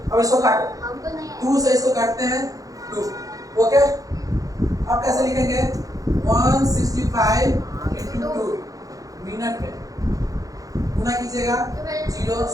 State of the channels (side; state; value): left; late; 0.17 ms